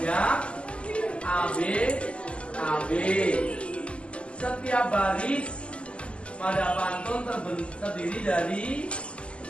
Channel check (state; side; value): late; right; 0.054 ms